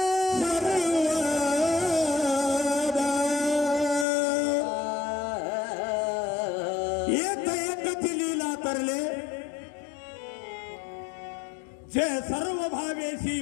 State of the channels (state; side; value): drops out; right; at 4.0 s